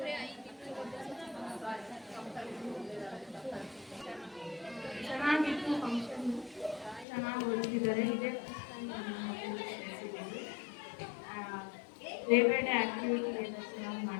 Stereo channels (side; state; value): right; drops out; at 7.1 s